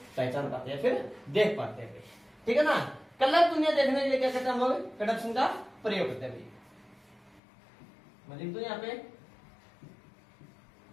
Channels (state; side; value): drops out; right; at 7.4 s